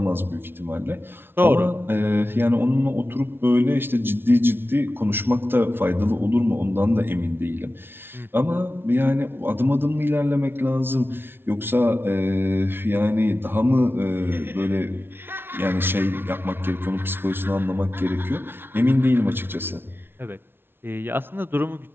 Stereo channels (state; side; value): late; left; 0.11 ms